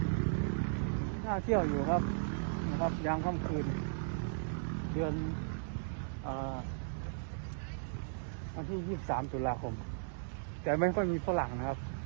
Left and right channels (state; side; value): silent; left; digital silence